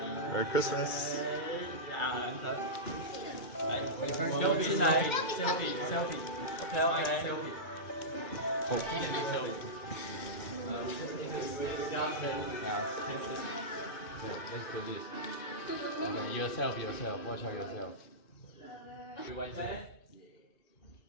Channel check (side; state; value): right; late; 2.4 ms